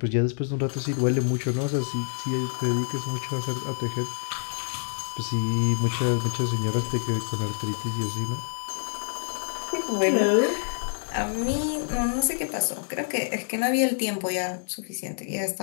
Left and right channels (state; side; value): silent; right; 60 dB below the other